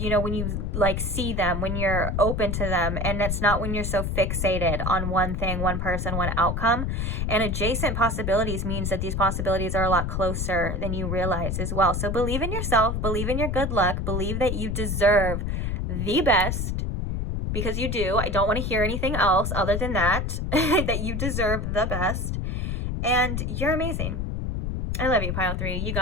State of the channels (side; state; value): left; noise; rumble, 1 dB below the sound